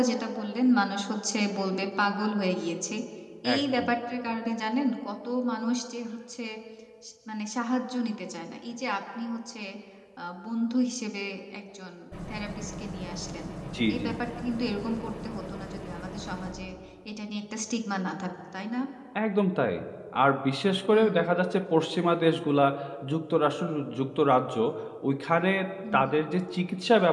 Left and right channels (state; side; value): identical; both; correlation 1.00